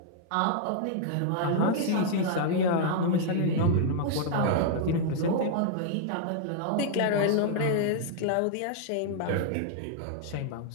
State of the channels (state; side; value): different; both; correlation -0.01